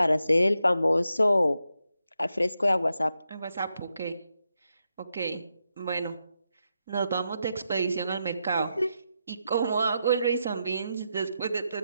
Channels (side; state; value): both; inverted; correlation -0.85